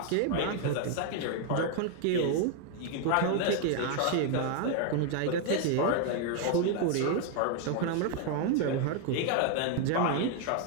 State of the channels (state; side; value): different; both; correlation 0.00